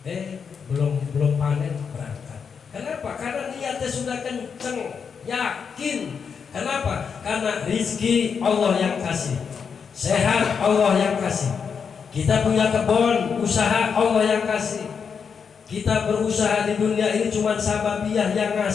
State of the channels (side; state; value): right; quieter; 6.3 dB